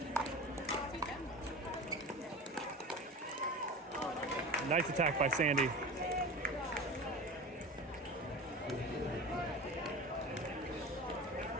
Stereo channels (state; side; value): normal; both; correlation 0.32